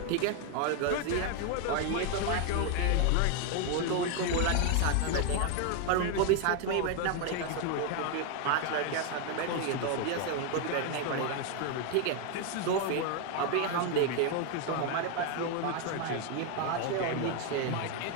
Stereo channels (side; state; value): both; different; correlation 0.01